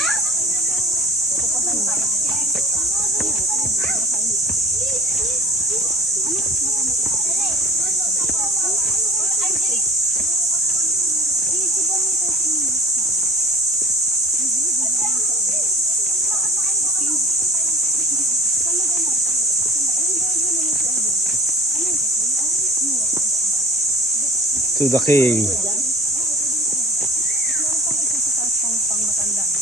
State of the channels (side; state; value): both; normal; correlation 0.41